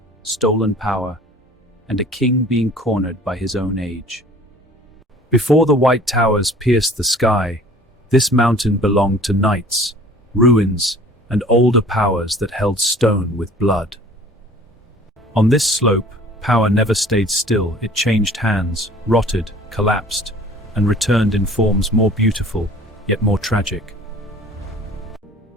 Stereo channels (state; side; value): normal; both; correlation 0.49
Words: stolen power, and a king being cornered by his own age. Before the white towers pierced the sky, this mountain belonged to knights, ruins, and older powers that held stone with blood. On this slope, power never stayed still. It changed hands, rotted, collapsed, and returned in forms more beautiful, yet more tragic.